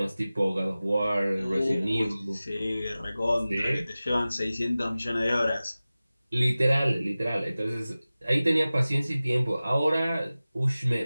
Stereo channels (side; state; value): both; inverted; correlation -0.97